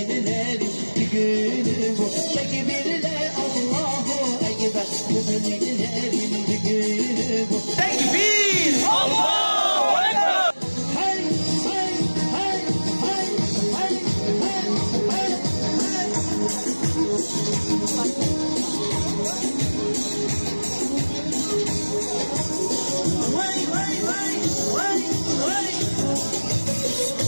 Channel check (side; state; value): both; inverted; correlation -1.00